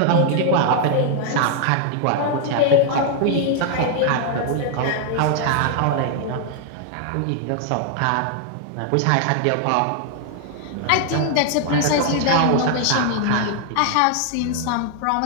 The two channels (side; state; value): both; different; correlation 0.00